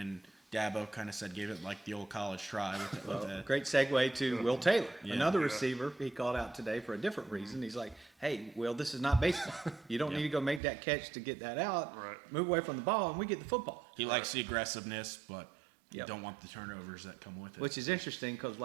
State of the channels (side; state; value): left; drops out; at 10.6 s